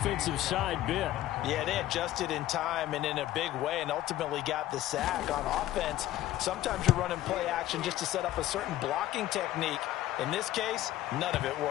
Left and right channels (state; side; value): quieter; right; 14.3 dB